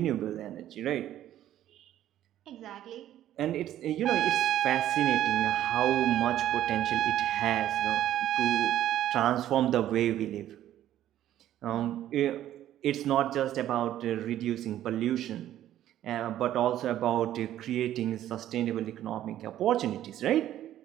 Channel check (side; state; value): left; quieter; 12.4 dB